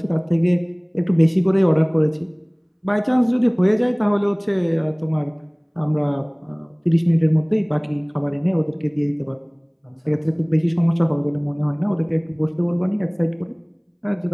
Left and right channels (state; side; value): identical; both; correlation 1.00